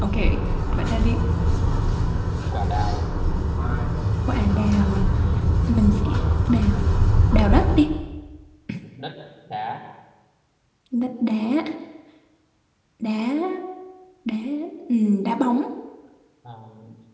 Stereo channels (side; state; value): both; identical; correlation 1.00